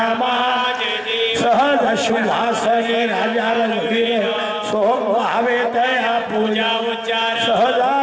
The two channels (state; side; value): identical; both; correlation 1.00